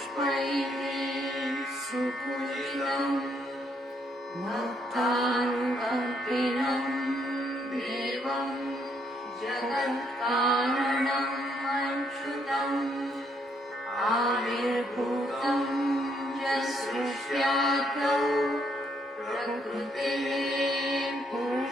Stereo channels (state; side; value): normal; both; correlation 0.72